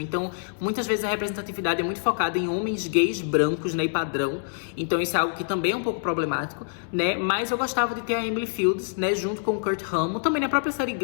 Então, muitas vezes a representatividade é muito focada em homens gays brancos, né, e padrão. Então, isso é algo que também é um pouco problemático, né. Mas eu gostava de ter a Emily Fields, né, junto com o Kurt Hammond. Também na própria série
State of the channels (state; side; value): silent; right; digital silence